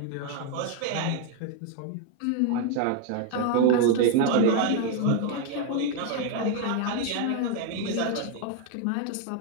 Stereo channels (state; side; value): different; both; correlation 0.01